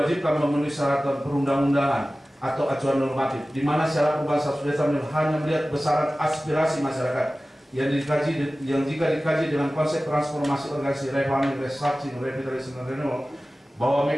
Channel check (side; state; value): both; normal; correlation 0.96